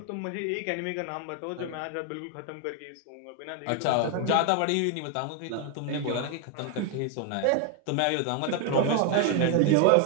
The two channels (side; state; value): both; different; correlation 0.01